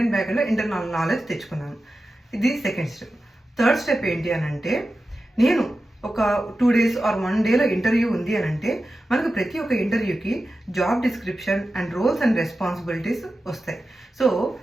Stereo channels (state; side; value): normal; both; correlation 0.93